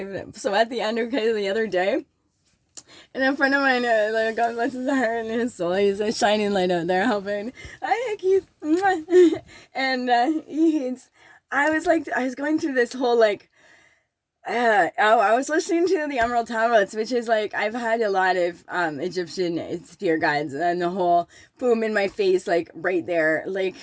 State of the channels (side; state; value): both; identical; correlation 1.00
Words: it. So at the end, okay, the other day, and a friend of mine, God bless his heart and his soul, he's a shining light out there helping. Hi, Keith. And I was going through this whole I was listening to the Emerald Tablets, which is I've had a lot of Egyptian spirit guides, and the whole boom in my face, right there,